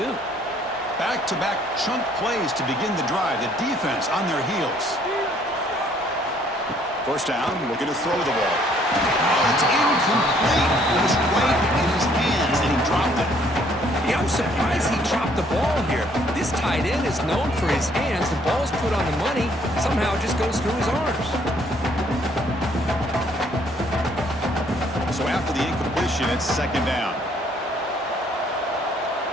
Back-to-back chunk plays to begin the drive. The defense on their heels. First down, looking to throw the ball. Oh, it's incomplete. It was right in his hands, and he dropped it. Yeah, I'm surprised he dropped the ball here. This tight end is known for his hands. The ball's put on the money. Somehow it just goes through his arms. So after the incompletion, it's second down.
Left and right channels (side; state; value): both; normal; correlation 0.64